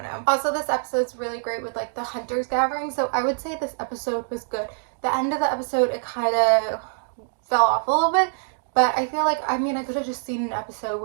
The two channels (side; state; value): left; silent; digital silence